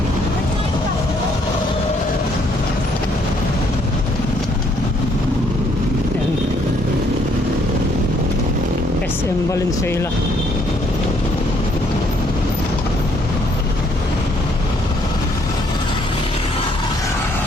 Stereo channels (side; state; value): both; normal; correlation 0.67